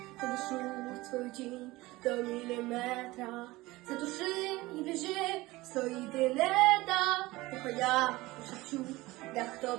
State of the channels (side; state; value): left; quieter; 19.8 dB